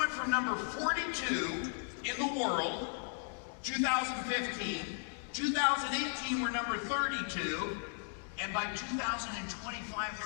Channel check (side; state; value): right; silent; 54 dB below the other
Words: from number 42 in the world, 2015, 2018 we're number 32. And by 2025,